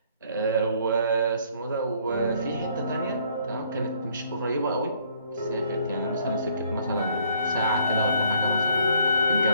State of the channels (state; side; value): inverted; both; correlation -0.64